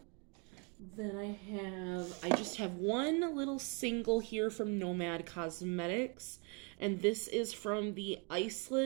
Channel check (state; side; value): quieter; left; 34.7 dB